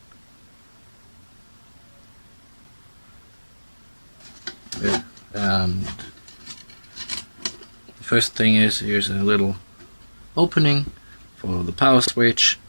Yeah. And the first thing is, here's a little opening for the power switch,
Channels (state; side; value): inverted; both; correlation -1.00